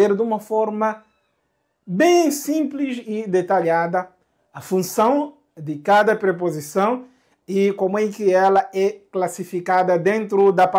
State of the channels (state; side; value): identical; both; correlation 1.00